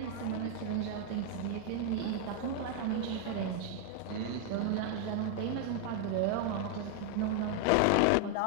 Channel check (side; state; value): both; different; correlation 0.00